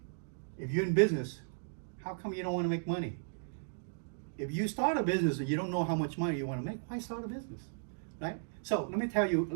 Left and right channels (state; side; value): silent; left; digital silence